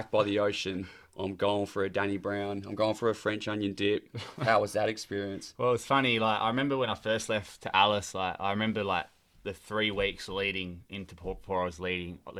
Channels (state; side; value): identical; both; correlation 1.00